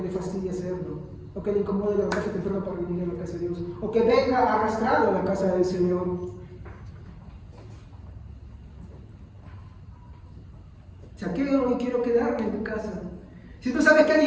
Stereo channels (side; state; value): both; identical; correlation 1.00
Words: le fastidie hacerlo, o que le incomode levantarse temprano para venir a la casa de Dios, o que venga arrastrado a la casa del Señor. Zaqueo, hoy quiero quedarme en tu casa. Si tú sabes que